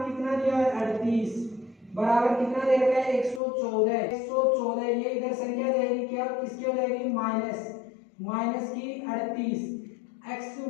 कितना दिया है 38 बराबर कितना दे रखा है 114। ये इधर संख्या जाएगी क्या किसकी हो जाएगी माइनस की 38। x1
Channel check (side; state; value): right; drops out; at 3.4 s